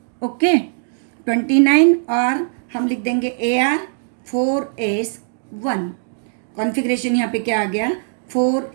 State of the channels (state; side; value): silent; left; digital silence